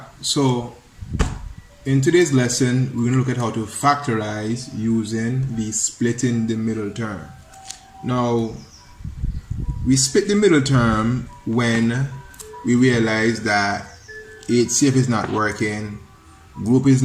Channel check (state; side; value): identical; both; correlation 1.00